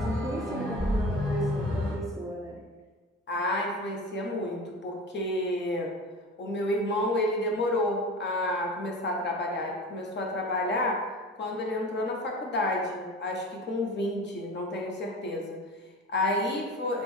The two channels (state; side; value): normal; both; correlation 0.33